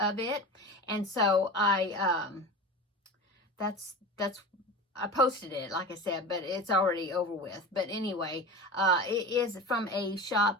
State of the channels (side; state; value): both; normal; correlation 0.31